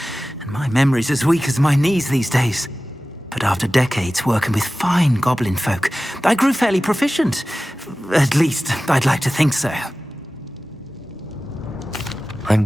and my memory's as weak as my knees these days. But after decades working with fine goblin folk, I grew fairly proficient. At least, I'd like to think so.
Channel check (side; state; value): both; normal; correlation 0.96